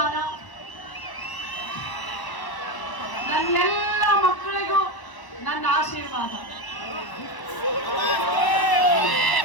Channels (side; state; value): right; late; 1.0 ms